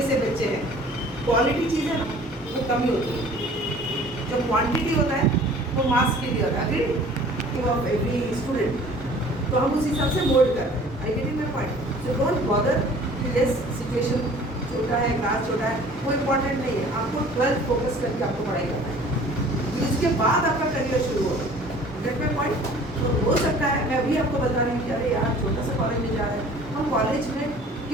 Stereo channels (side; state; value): both; normal; correlation 0.49